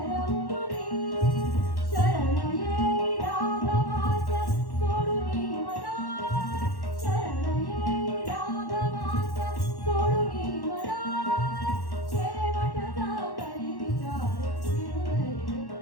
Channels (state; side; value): late; right; 1.1 ms